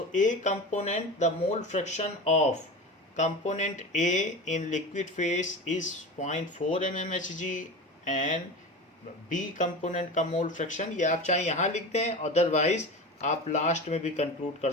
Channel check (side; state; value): both; normal; correlation 0.29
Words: A component, the mole fraction of component A in liquid phase is 0.4 mmHg and B component का मोल फ्रैक्शन, ये आप चाहे यहाँ लिख दें, अदरवाइज आप लास्ट में भी कंक्लूड कर